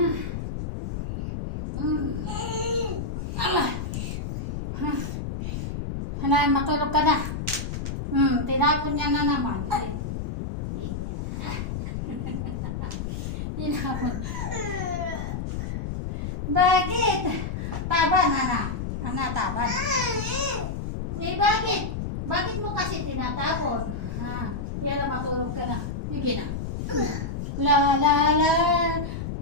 Hanay, matulog ka na. Tinapon niya na naman. Tinapon. Bakit? Taban, taban. Bakit? Bakit mo kasi tinatapon? Yan na, matulog ka na. Sige na. La la la.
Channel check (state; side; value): noise; left; rumble, 5 dB below the sound